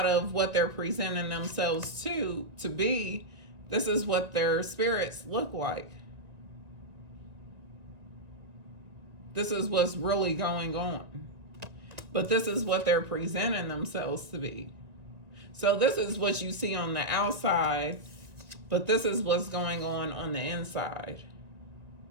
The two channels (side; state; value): left; late; 1.9 ms